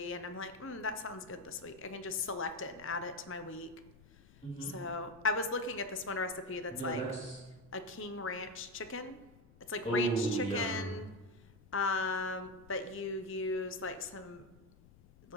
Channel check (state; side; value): noise; left; rumble, 23 dB below the sound